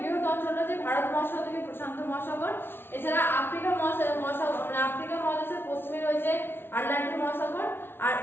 বৃহৎ অঞ্চলটা যে ভারত মহাসাগর থেকে প্রশান্ত মহাসাগর, এছাড়া আফ্রিকা মহাসাগর মানে আফ্রিকা মহাদেশের পশ্চিমে রয়েছে আটলান্টিক মহাসাগর, আর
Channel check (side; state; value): right; late; 0.11 ms